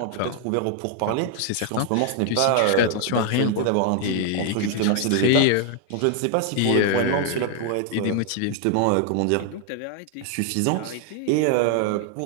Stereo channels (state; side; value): different; both; correlation 0.00